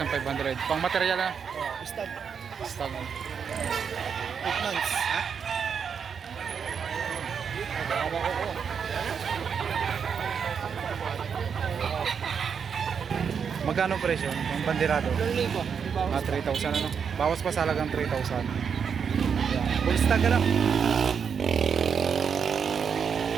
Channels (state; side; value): quieter; left; 6.8 dB